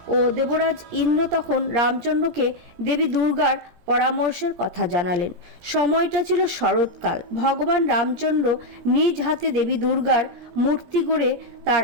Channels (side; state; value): left; late; 17 ms